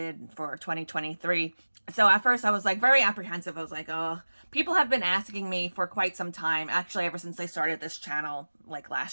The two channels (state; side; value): inverted; both; correlation -1.00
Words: for 2023. So at first I was like very apprehensive. I was like, oh, people have been asking me for quite some time. Actually, ever since I started this channel, like